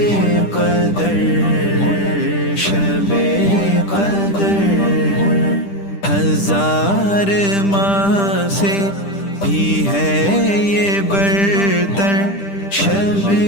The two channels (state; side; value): late; right; 10 ms